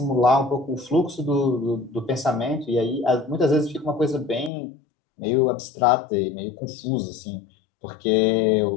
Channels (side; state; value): right; drops out; at 4.5 s